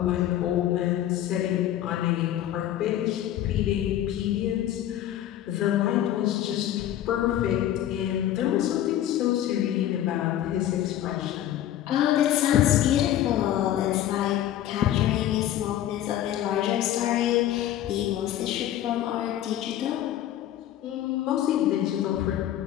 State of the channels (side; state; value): right; quieter; 12.1 dB